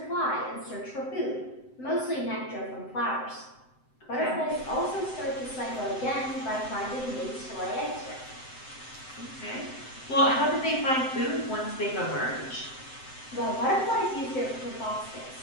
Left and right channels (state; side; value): late; right; 7.8 ms